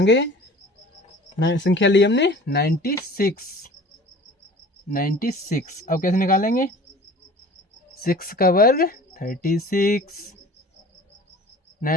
संख्या ली हमने 96, 96। अब कैसे निकालेंगे, 6 का वर्ग 36,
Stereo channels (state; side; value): normal; both; correlation 0.44